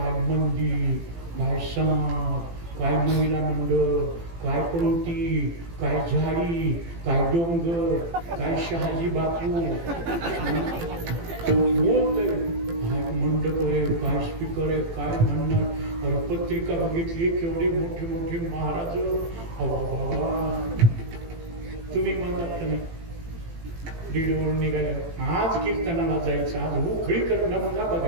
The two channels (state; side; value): late; left; 18 ms